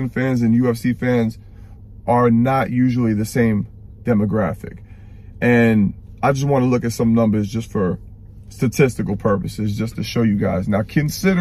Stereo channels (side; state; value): both; identical; correlation 1.00